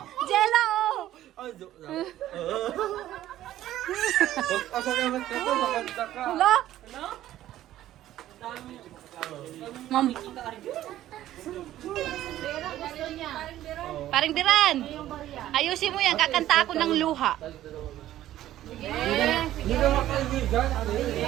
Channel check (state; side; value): quieter; left; 13.4 dB